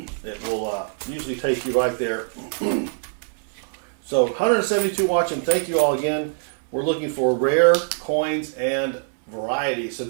It will usually take you right there. So 172 watching. Thank you all again. We're looking for rare coins and varieties. So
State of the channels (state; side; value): silent; left; 63 dB below the other